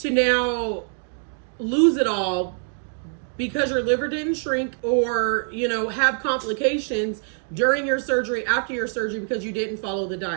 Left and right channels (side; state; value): left; silent; 56 dB below the other